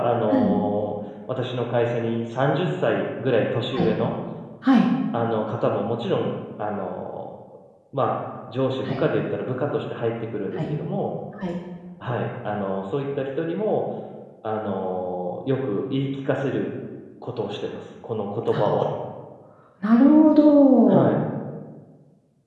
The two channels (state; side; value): identical; both; correlation 1.00